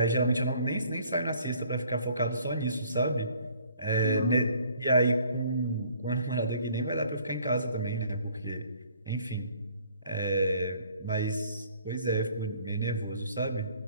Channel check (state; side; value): inverted; both; correlation -0.58